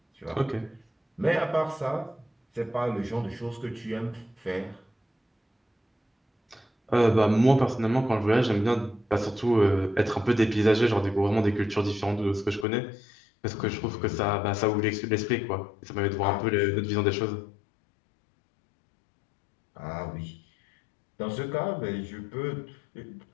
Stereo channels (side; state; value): right; drops out; at 12.7 s